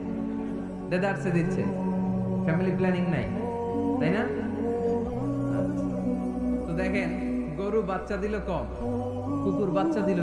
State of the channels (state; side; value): identical; both; correlation 1.00